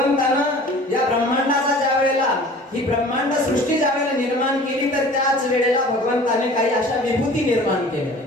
या ब्रह्मांडाचा ज्या वेळेला, ही ब्रह्मांड सृष्टी ज्या वेळेला निर्माण केली, तर त्याच वेळेला भगवंताने काही अशा विभूती निर्माण केल्या.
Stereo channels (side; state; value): both; normal; correlation 0.45